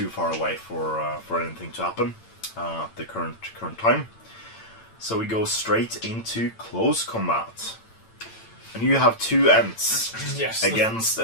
far away for anything to happen at the current time. So we go straight into close combat. And you have two Ents against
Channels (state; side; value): late; right; 8.9 ms